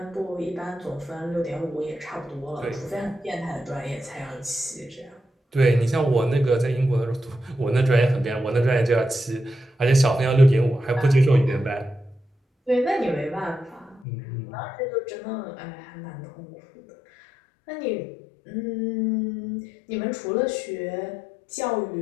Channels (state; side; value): drops out; right; at 14.1 s